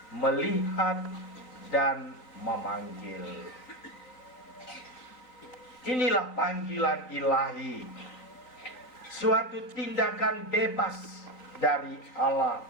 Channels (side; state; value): right; late; 3.8 ms